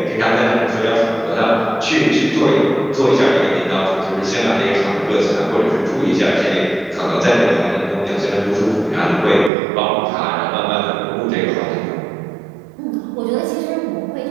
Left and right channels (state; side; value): drops out; left; at 9.5 s